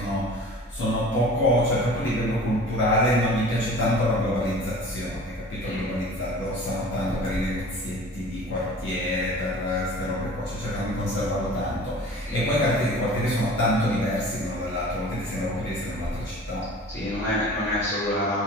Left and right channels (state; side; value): normal; both; correlation 0.43